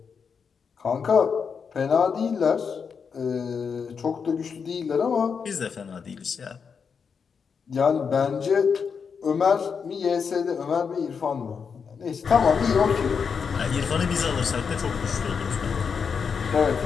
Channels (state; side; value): quieter; right; 6.1 dB